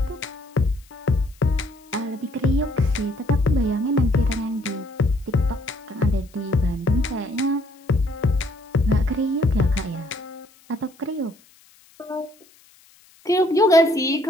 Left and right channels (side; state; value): left; noise; hiss, 29 dB below the sound